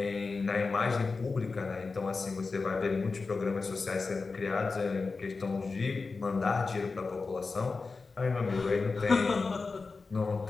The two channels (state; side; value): quieter; right; 4.2 dB